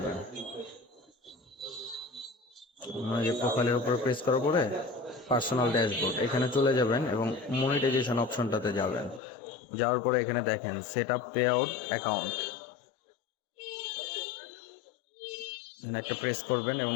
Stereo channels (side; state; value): right; drops out; at 9.2 s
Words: যে প্রোফাইলের উপর প্রেস করার পরে পার্সোনাল ড্যাশবোর্ড এখানে চলে যাবেন এবং মনিটাইজেশন অপশনটাতে যাবেন। যাওয়ার পরে এখানে দেখেন set up pay out account, একটা প্রেস করবেন এবং